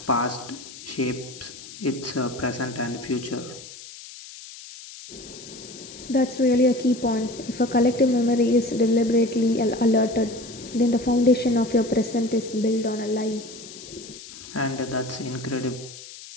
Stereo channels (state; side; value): noise; left; hiss, 15 dB below the sound